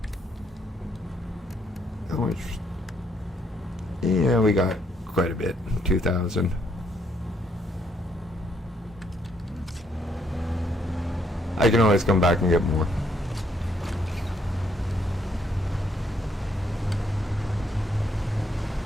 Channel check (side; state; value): both; normal; correlation 0.72